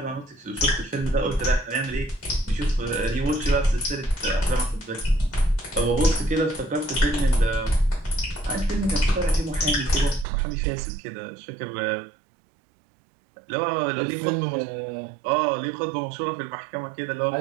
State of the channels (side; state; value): left; drops out; at 10.2 s